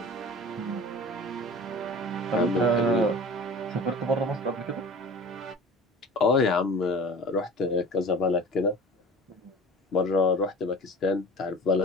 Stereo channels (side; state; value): both; normal; correlation 0.39